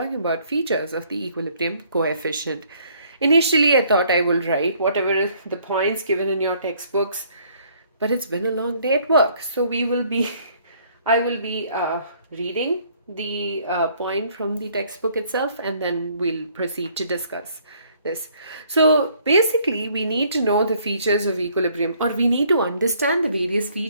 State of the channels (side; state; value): both; inverted; correlation -0.63